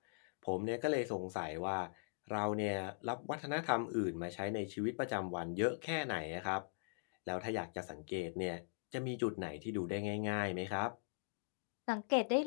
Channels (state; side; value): silent; right; digital silence